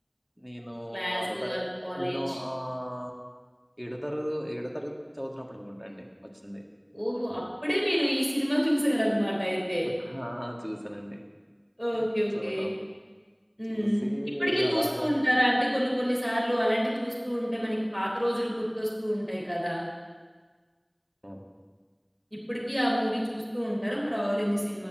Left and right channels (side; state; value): both; identical; correlation 1.00